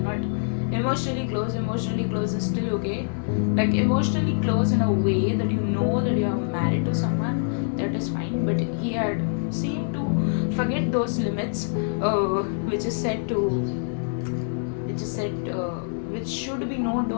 not emotionally close. Emotionally close is still okay. Like, emotionally close in a way that you know that you are married to someone, that is fine. But he had seemed to forget those limits, which is said to which should be known to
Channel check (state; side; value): silent; right; digital silence